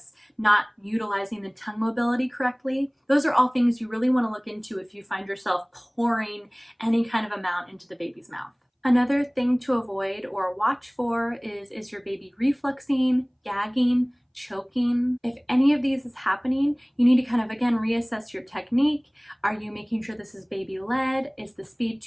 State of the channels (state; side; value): identical; both; correlation 1.00